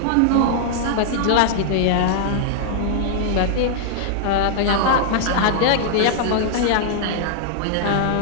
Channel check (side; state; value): both; different; correlation -0.01